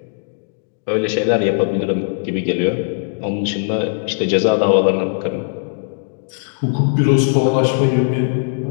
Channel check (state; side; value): silent; right; digital silence